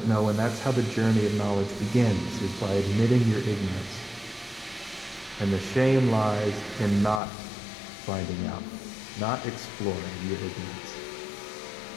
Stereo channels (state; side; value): drops out; right; at 7.2 s